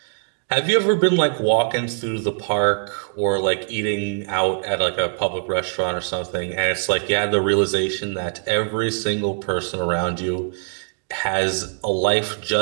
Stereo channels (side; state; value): left; silent; digital silence